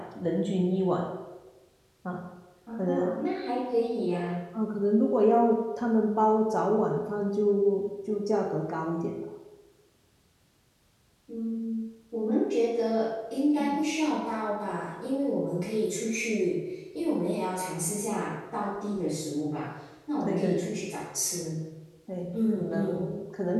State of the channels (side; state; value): both; identical; correlation 1.00